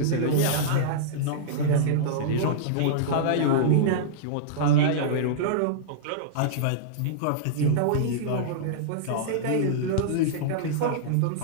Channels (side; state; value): both; different; correlation -0.03